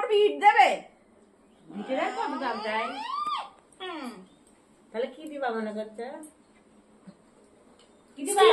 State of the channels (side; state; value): both; identical; correlation 1.00